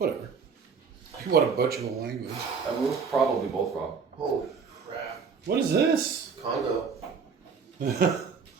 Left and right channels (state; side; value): quieter; left; 5.7 dB